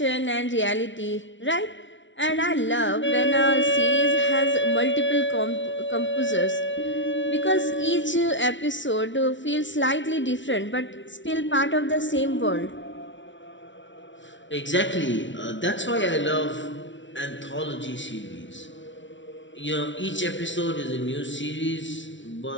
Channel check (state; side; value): late; right; 0.55 ms